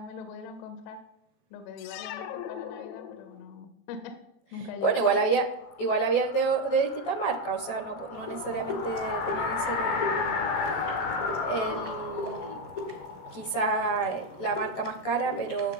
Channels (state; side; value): late; right; 18 ms